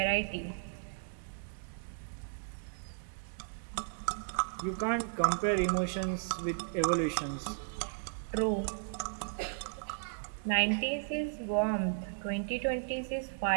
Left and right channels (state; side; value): silent; left; digital silence